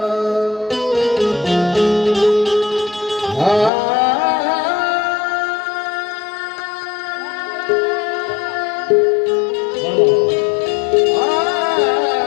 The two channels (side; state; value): right; drops out; at 3.7 s